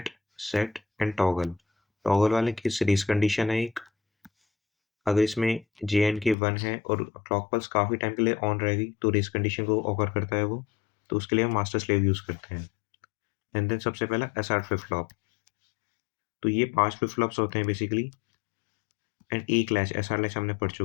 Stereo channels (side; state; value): right; drops out; at 6.4 s